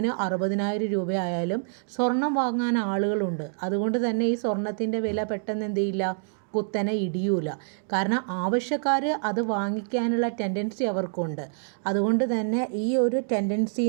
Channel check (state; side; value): silent; left; digital silence